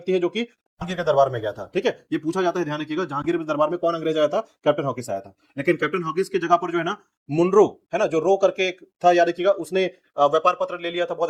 है जो कि जहांगीर के दरबार में गया था। ठीक है, ये पूछा जाता है, ध्यान रखिएगा, जहांगीर के दरबार में कौन अंग्रेज आया था, कैप्टन हॉकिंस आया था। लेकिन कैप्टन हॉकिंस की जगह पर जो है ना मुनरो, है ना, जो रो करके एक था, याद रखिएगा, उसने व्यापार पत्र ले लिया था, बहुत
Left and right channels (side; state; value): both; identical; correlation 1.00